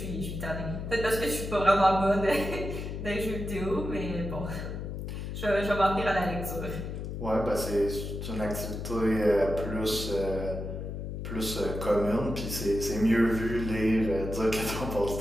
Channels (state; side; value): noise; left; hum, 6 dB below the sound